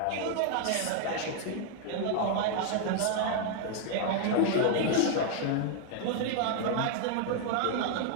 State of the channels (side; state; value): both; different; correlation 0.00